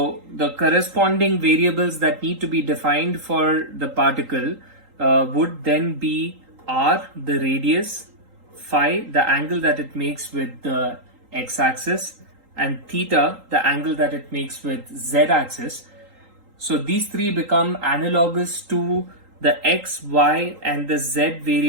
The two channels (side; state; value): left; late; 3.8 ms